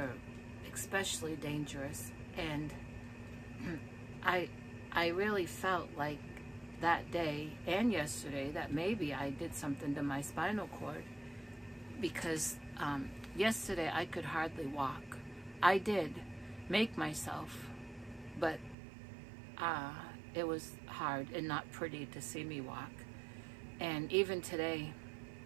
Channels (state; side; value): drops out; left; at 18.8 s